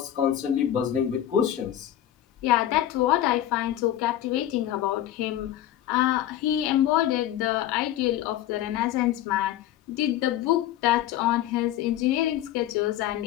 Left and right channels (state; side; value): quieter; right; 12.3 dB